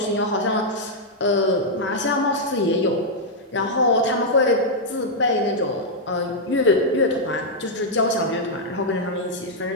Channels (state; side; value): normal; both; correlation -0.04